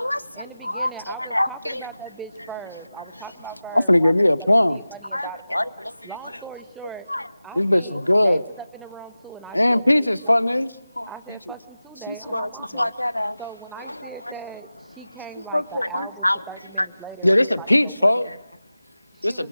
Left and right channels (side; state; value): both; inverted; correlation -0.96